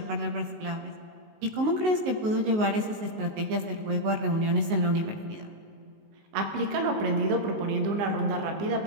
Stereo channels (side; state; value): left; late; 19 ms